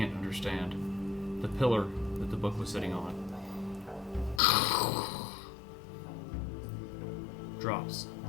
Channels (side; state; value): right; drops out; at 4.4 s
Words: understand, the pillar that the book was sitting on drops